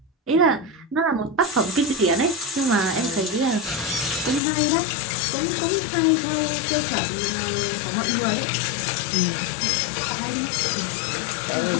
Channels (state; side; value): drops out; right; at 4.4 s